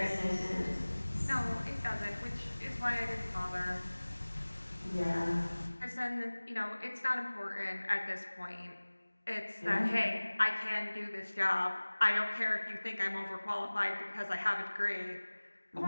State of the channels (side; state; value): both; inverted; correlation -1.00